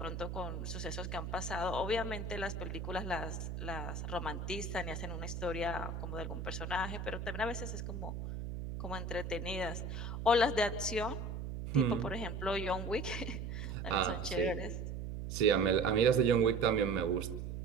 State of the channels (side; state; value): right; noise; hum, 5 dB below the sound